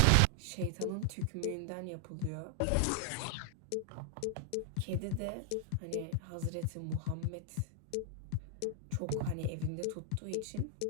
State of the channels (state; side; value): different; both; correlation 0.00